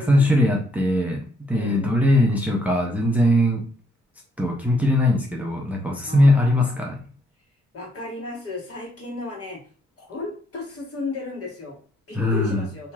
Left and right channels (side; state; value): both; normal; correlation 0.72